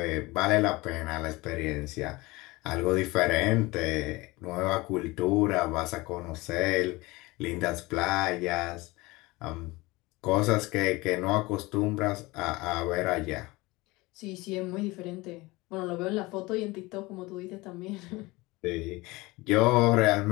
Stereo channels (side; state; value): right; quieter; 22.1 dB